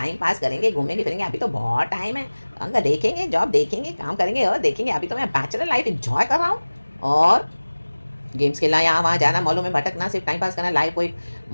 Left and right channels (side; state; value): both; inverted; correlation -1.00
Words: पास करेंगे, घूमेंगे फिरेंगे, अभी तो बहुत टाइम है, अंग देखेंगे, जॉब देखेंगे, काम करेंगे और देखेंगे। अभी तो मैं बैचलर लाइफ इंजॉय कर रहा हूँ और गेम्स खेलना, यहाँ वहाँ जाना, मॉलों में भटकना, सिर्फ टाइम पास करना, लाइफ को एक